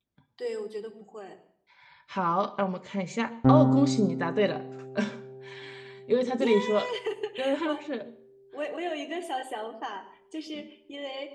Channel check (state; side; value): identical; both; correlation 1.00